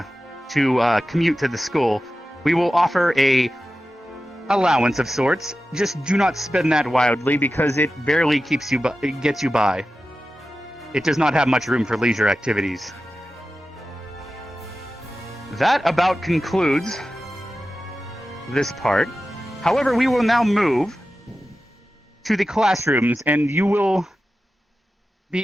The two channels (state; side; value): normal; both; correlation 0.93